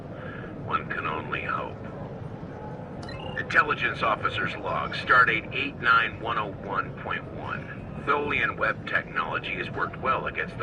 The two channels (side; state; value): both; identical; correlation 1.00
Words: One can only hope. Intelligence Officer's Log, Stardate 89101.1. Tholian web technology has worked well against